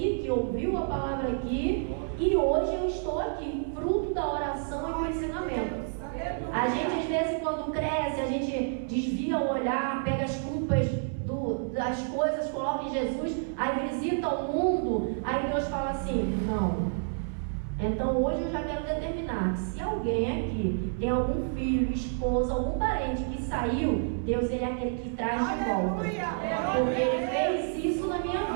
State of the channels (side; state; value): left; silent; 58 dB below the other